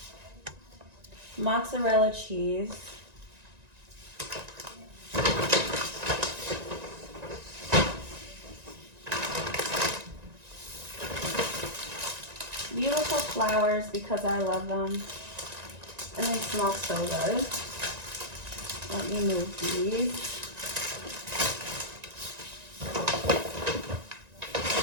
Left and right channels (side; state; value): left; late; 1.9 ms